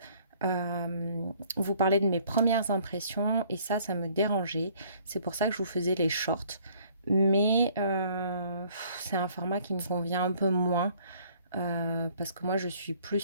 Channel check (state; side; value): inverted; both; correlation -0.59